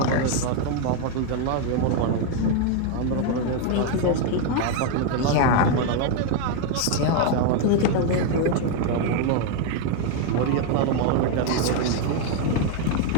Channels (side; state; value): both; different; correlation 0.01